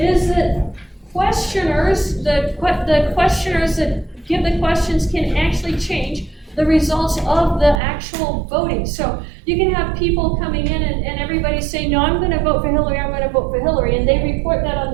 that questioners, the questioners that give the questions can actually change the results of the actual voting. So you can have people coming in and everybody say, no, I'm going to vote for Hillary, I'm going to vote for Hillary, and they report that on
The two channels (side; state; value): left; drops out; at 7.8 s